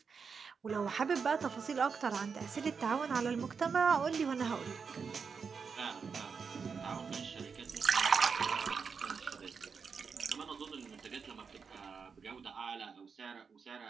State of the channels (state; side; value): quieter; left; 5.7 dB